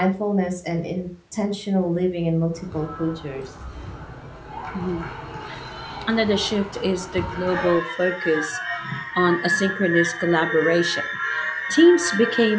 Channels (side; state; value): both; identical; correlation 1.00